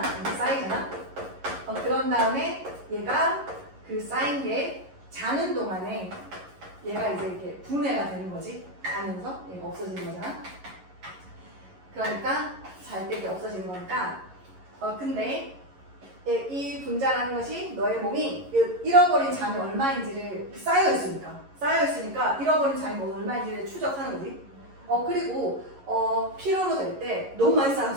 그런 다음에 얘가 그 쌓인 게 자는 동안에 얘가 이제 이렇게 분해가 되는 거지. 자면서 얘가 없어지는 거잖아. 그러니까 잘 때 이렇게 없어지는 거니까. 근데 이 분자라는 것이 너의 몸이 잃어버린 잠이 얼마인지를 쌓여있으니까 잃어버린 잠이 얼마인지를 추적하는 거지. 그리고 필요로 될 때 너무 많이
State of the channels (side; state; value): left; late; 11 ms